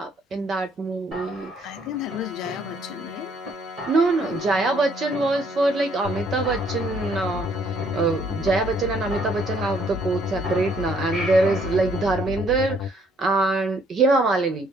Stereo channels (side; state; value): both; normal; correlation 0.65